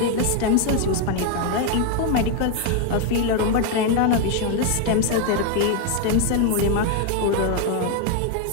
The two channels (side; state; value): both; different; correlation 0.01